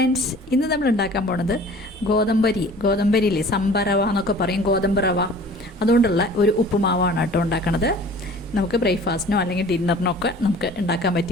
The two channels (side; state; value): both; normal; correlation 0.46